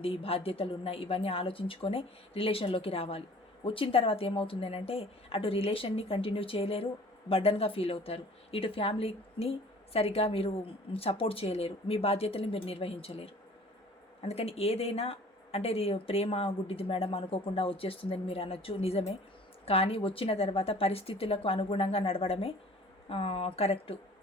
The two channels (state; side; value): normal; both; correlation 0.49